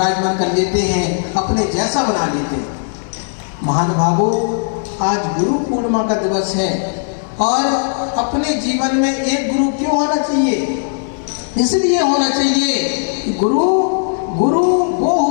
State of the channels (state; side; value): silent; right; digital silence